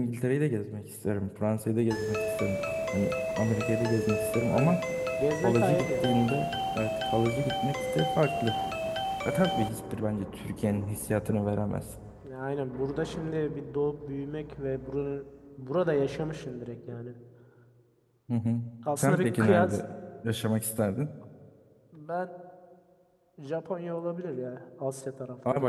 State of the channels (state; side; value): identical; both; correlation 1.00